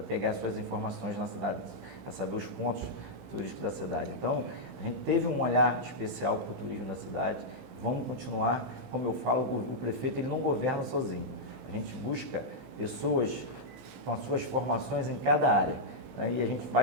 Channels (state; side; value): late; left; 15 ms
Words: pegar suas informações na cidade, para saber os pontos turísticos da cidade. Então, a gente teve um olhar especial para o turismo da cidade, vamos continuar, como eu falo, o prefeito ele não governa sozinho, a gente busca pessoas com as suas formações em cada área, né? E a gente vai